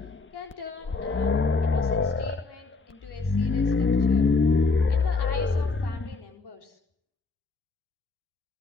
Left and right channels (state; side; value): quieter; right; 4.1 dB